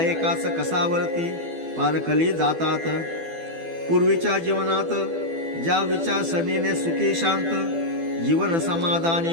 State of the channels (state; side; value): late; left; 12 ms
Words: कसावरती पारखली जातात। पूर्वीच्या जीवनात ज्या विचारसरणीने सुखी शांत जीवन